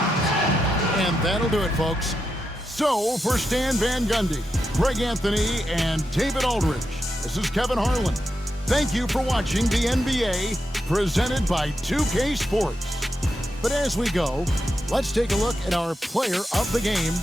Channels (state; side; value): normal; both; correlation 0.86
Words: that'll do it, folks. So, for Stan Van Gundy, Greg Anthony, and David Aldridge, this is Kevin Harlan. Thank you for watching the NBA, presented by 2K Sports. But as we go, let's take a look at our player of the game,